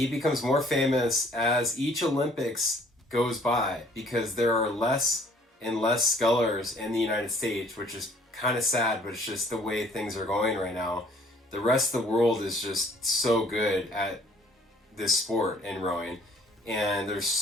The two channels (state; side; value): normal; both; correlation 0.58